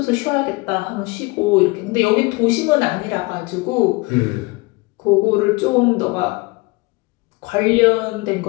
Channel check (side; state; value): right; quieter; 24.9 dB